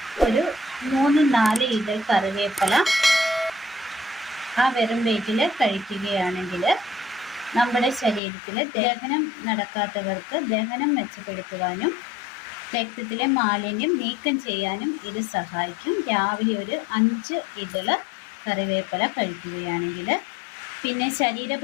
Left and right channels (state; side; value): drops out; right; at 8.2 s